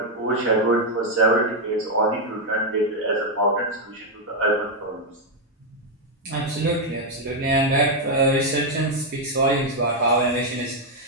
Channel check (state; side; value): normal; both; correlation 0.01